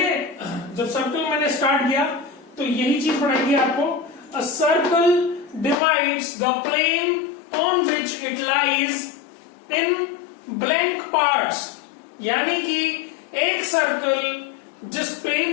जब सर्कल मैंने स्टार्ट किया तो यही चीज पढ़ाई थी आपको। A circle divides the plane on which it lies in blank parts. यानी कि एक सर्कल जिस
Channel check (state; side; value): drops out; right; at 5.8 s